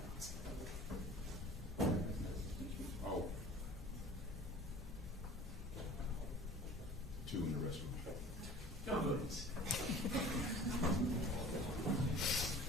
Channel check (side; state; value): both; normal; correlation 0.44